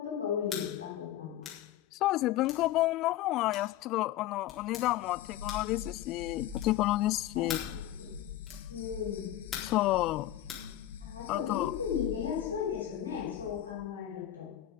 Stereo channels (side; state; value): right; quieter; 13.0 dB